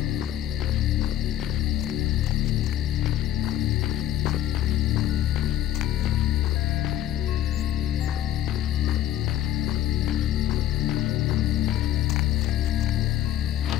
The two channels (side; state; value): right; quieter; 12.2 dB